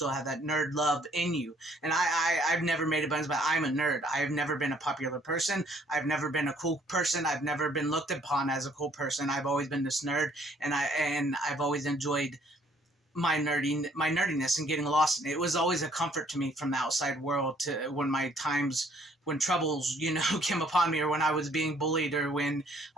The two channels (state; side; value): normal; both; correlation 0.62